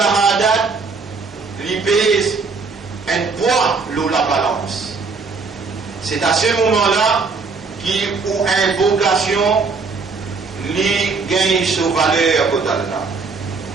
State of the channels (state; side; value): quieter; left; 4.5 dB